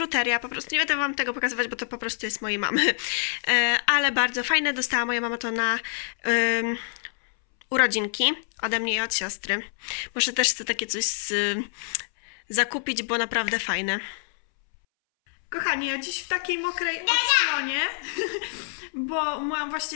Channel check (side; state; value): right; silent; 61 dB below the other